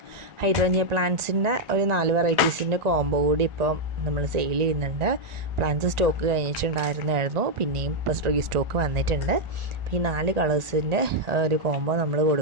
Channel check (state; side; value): late; left; 1.9 ms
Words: ഹൈഡ്രേഞ്ചിയ പ്ലാന്റ്സിൻ്റെ ഒരു 4 വെറൈറ്റീസിൻ്റെ കോംബോ കൂടി ഇപ്പോൾ നമ്മൾ സെയിൽ ചെയ്യുന്നുണ്ട്. പ്ലാന്റ്സ് സ്റ്റോക്ക് കഴിഞ്ഞിട്ടുണ്ടായിരുന്നു, പിന്നെയും ഇപ്പോൾ റീസ്റ്റോക്ക് വന്നിട്ടുണ്ട്. അപ്പോൾ ഈ 4 കളേഴ്സിൻ്റെ ഒരു കോംബോ നമ്മൾ